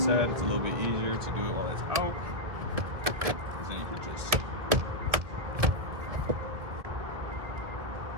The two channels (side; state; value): left; late; 1.9 ms